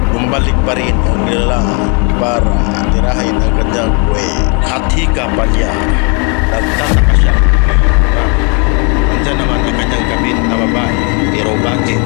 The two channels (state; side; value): quieter; right; 34.9 dB